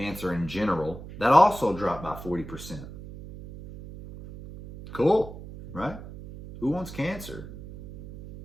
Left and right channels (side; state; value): right; noise; hum, 13 dB below the sound